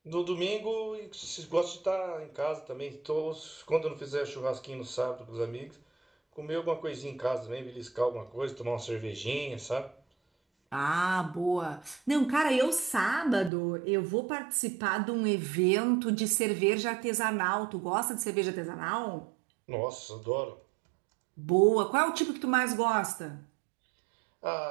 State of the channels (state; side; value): drops out; left; at 13.5 s